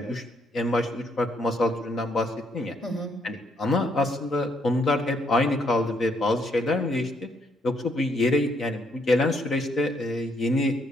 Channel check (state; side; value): normal; both; correlation 0.72